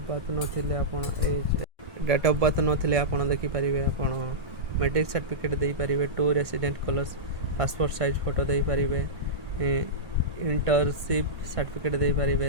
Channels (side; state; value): left; late; 1.5 ms